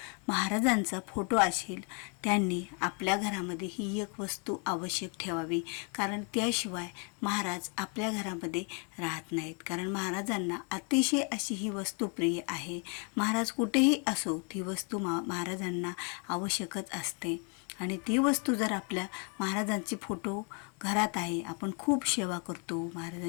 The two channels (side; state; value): right; quieter; 37.3 dB